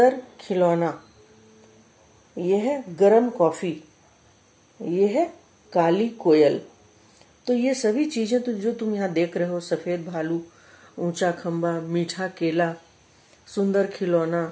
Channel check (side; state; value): both; identical; correlation 1.00